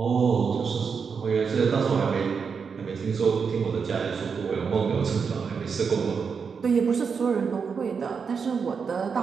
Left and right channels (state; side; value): quieter; left; 5.9 dB